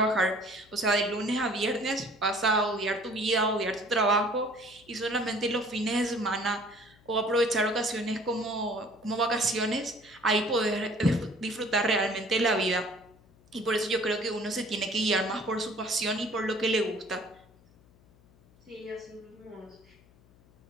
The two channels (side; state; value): left; noise; hum, 28 dB below the sound